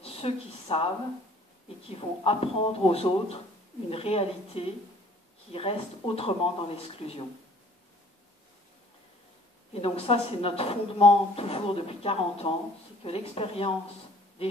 ceux qui savent et qui vont apprendre aux autres une réalité qui reste autrement dans l'exclusion. Et donc ça, c'est notre fondement toujours depuis 40 ans, c'est que l'expérience des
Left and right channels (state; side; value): normal; both; correlation 0.55